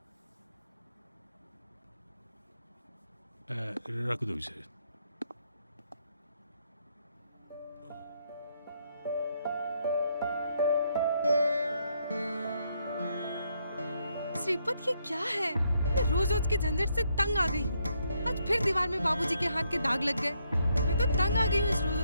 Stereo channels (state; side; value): inverted; both; correlation -0.75